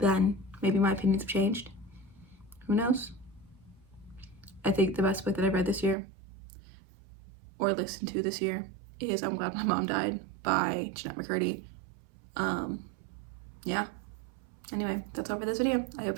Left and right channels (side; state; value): left; drops out; at 6.0 s